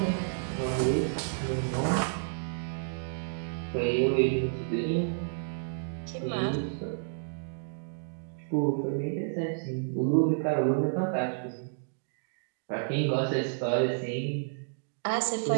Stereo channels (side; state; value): left; silent; digital silence